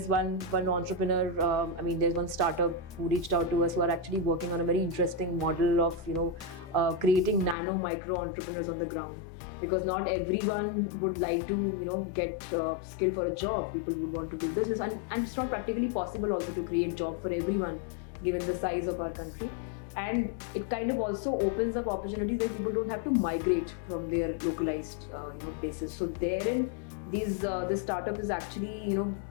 one entrepreneur, I mean, there's one startup who reached out to us who are actually working on a very interesting model of, you know, creating nano micro entrepreneurs on the ground. Because not everyone would like to, you know, get skill for a job. People would want to do business, and it's not practically possible also to create job for everyone given the size of our country. And it kind of also opens up opportunities where people don't have to migrate from their localized, you know, places. So therein, this startup is actually, you know,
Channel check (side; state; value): right; drops out; at 7.6 s